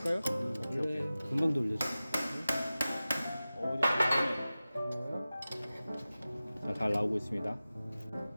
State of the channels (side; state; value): both; inverted; correlation -0.96